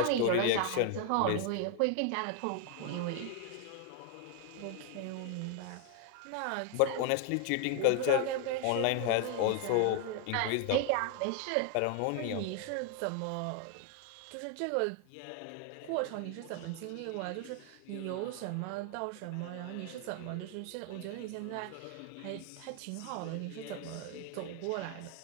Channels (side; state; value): both; different; correlation 0.00